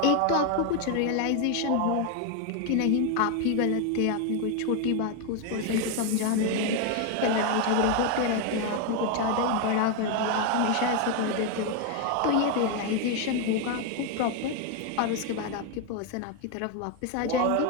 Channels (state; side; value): different; both; correlation 0.01